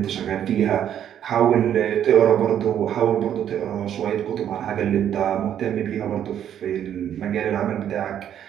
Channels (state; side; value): quieter; left; 10.0 dB